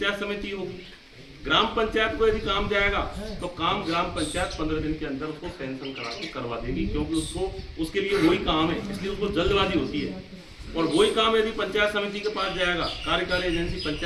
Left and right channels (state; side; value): identical; both; correlation 1.00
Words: समिति होगी। ग्राम पंचायत को यदि काम जाएगा तो काम ग्राम पंचायत 15 दिन के अंदर उसको सैंक्शन करा के करवा देगी, क्योंकि उसको उसके लिए वही काम है, इसलिए उसको जल्दबाजी होती है। और वही काम यदि पंचायत समिति के पास जाएगा, कार्यकारी एजेंसी